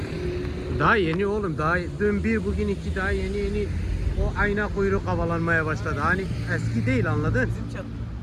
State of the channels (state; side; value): identical; both; correlation 1.00